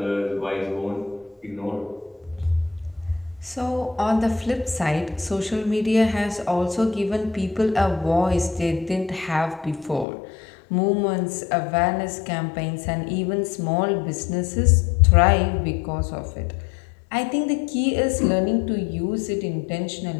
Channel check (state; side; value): drops out; right; at 10.1 s